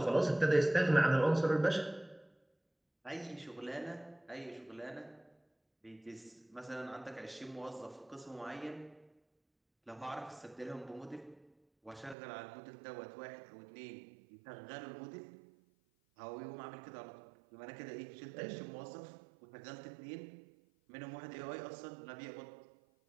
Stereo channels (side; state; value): left; drops out; at 12.2 s